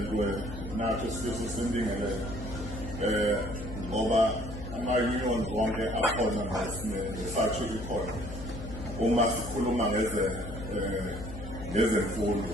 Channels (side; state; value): left; noise; hum, 9 dB below the sound